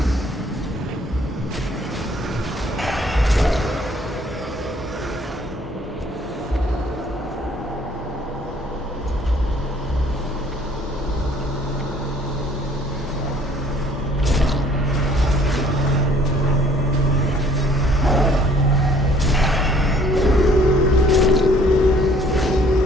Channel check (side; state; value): both; normal; correlation 0.58